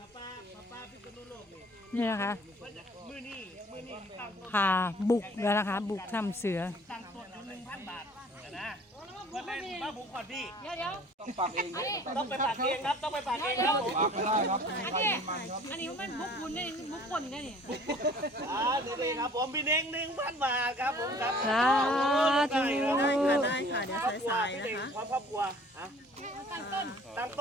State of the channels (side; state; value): both; normal; correlation 0.51